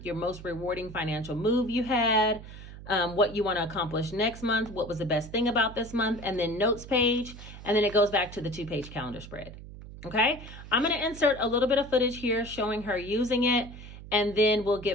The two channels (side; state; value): right; noise; hum, 14 dB below the sound